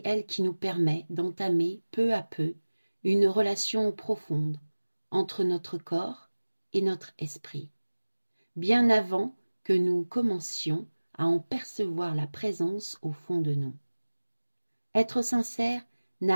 elle qui nous permet d'entamer peu à peu une relation profonde entre notre corps et notre esprit, bien avant que nous commencions à en percevoir la présence au fond de nous. Être sincère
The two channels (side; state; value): both; inverted; correlation -1.00